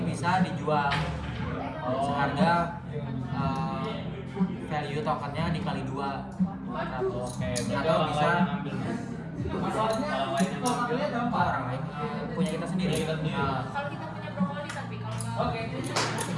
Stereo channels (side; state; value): both; identical; correlation 1.00